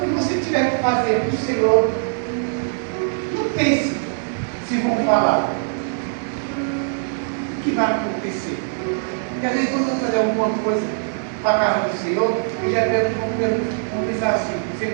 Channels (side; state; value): left; silent; digital silence